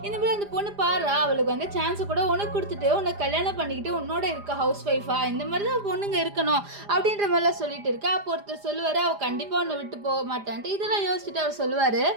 இந்த மாதிரி அந்த பொண்ணு பாரு அவளுக்கு வந்து சான்ஸை கூட உனக்கு கொடுத்துட்டு உன்னை கல்யாணம் பண்ணிக்கிட்டு உன்னோட இருக்க ஹவுஸ் ஒய்ஃபா, இந்த மாதிரி தான் பொண்ணுங்க இருக்கணும் அப்படின்ற மாதிரிலாம் சொல்லிட்டு இருக்கா. அப்போ ஒருத்தர் சொல்லுவார், அவள் கண்டிப்பாக உன்னை விட்டு போக மாட்டான்ட்டு. இதெல்லாம் யோசிச்சுட்டு அவர் சொல்லுவார்,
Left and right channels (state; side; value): late; left; 4.9 ms